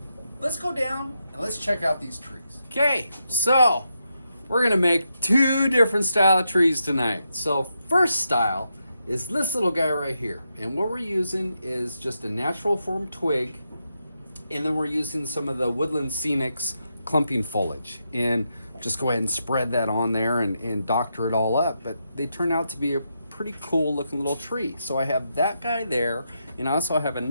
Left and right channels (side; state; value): both; inverted; correlation -0.83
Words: let's go down and let's check out these trees. Okay, so we're gonna make two different style of trees tonight. So first style is this little guy right here, and what we're using is just a natural form twig, and then we're using some of the woodland scenics clumping foliage, and just go ahead and spread that on there and doctor it all up. But they turn out to be a pretty cool looking little tree. So I have that guy there, and I also have